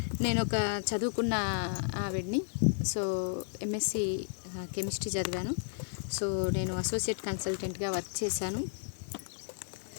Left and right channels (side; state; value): right; silent; digital silence